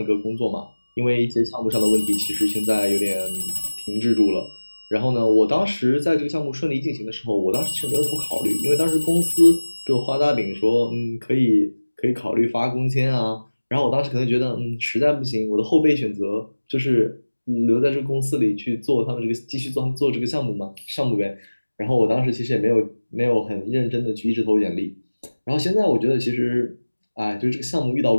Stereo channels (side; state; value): both; inverted; correlation -1.00